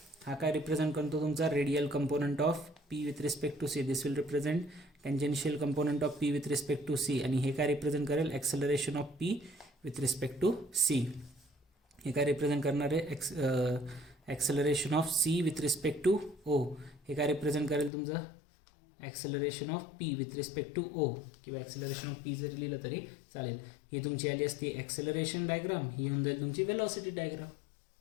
हा काय रिप्रेझेंट करतो तुमचा radial component of P with respect to C. This will represent tangential component of P with respect to C. आणि हे काय रिप्रेझेंट करेल, acceleration of P with respect to C. हे काय रिप्रेझेंट करणार आहे, acceleration of C with respect to O. हे काय रिप्रेझेंट करेल तुमचं, acceleration of P with respect to O, किंवा ॲक्सेलरेशन ऑफ P जरी लिहिलं तरी चालेल. ही तुमची आली असती ॲक्सेलरेशन डायग्राम, ही होऊन जाईल तुमची वेलॉसिटी डायग्राम.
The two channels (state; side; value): drops out; right; at 17.9 s